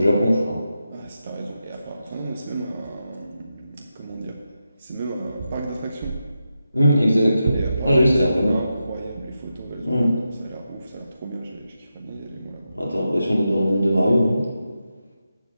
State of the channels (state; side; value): inverted; both; correlation -0.88